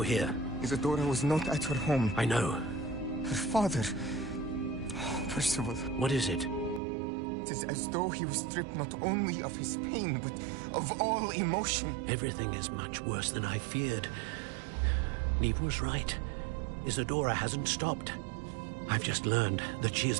here. Isadora was not at her home. I know. Her father... Percival. What is it? It is as though he was stripped not only of his pain, but of all emotion. Everything is much worse than I feared. Neve was right. Isadora hasn't stopped. I've just learned that she has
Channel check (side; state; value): left; drops out; at 6.8 s